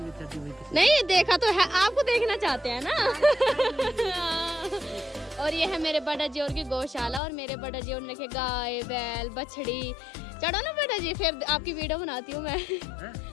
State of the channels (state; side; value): drops out; right; at 7.2 s